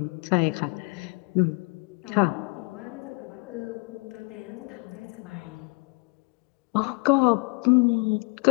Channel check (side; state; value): right; quieter; 30.2 dB